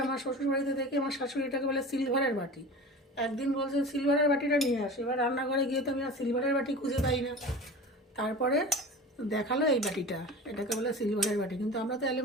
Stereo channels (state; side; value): normal; both; correlation 0.35